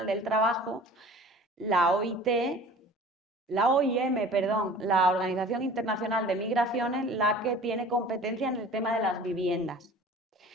del Trabajo, la OIT, la OIM, perdón, la Organización Internacional de Migraciones, la que tiene competencia en el tema de las viviendas.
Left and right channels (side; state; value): both; normal; correlation 0.44